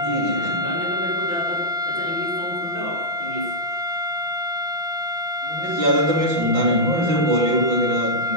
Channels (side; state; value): left; late; 5.9 ms